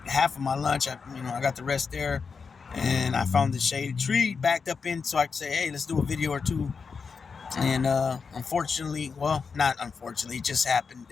half of my lunch. I got the rest there, and I found the shaded tree backed up in so I could say, hey, let's do a video or two. And unfortunately, well, not unfortunately, it just happened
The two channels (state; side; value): quieter; right; 5.4 dB